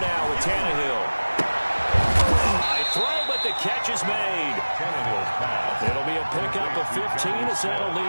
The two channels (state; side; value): inverted; both; correlation -1.00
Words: with Tannehill. High throw, but the catch is made. Tannehill's pass. It'll be a pickup of 15 as that'll